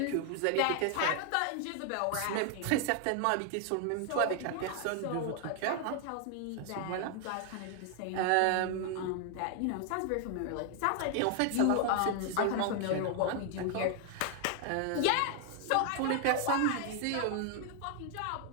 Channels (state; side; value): different; both; correlation 0.00